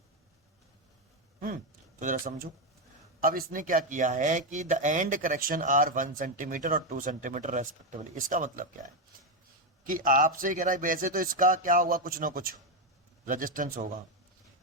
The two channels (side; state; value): both; normal; correlation 0.06